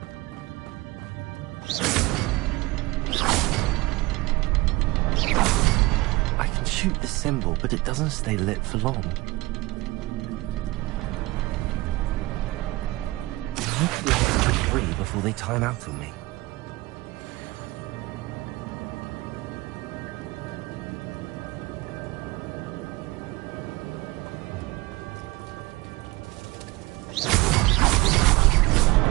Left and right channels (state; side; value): quieter; left; 21.1 dB